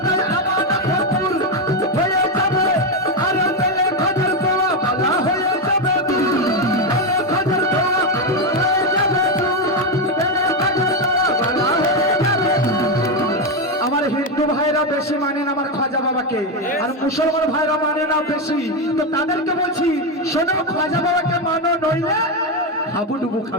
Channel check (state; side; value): normal; both; correlation 0.08